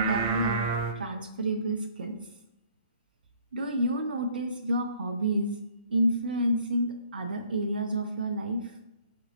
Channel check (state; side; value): inverted; both; correlation -0.58